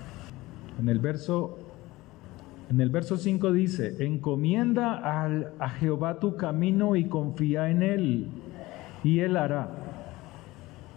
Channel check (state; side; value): quieter; right; 19.4 dB